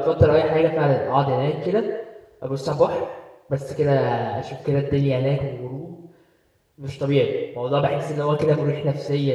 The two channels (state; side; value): identical; both; correlation 1.00